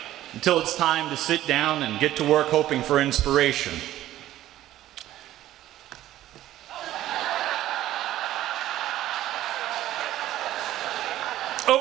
until it's time to sit down and get to work hoping for inspiration.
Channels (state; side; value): quieter; left; 13.8 dB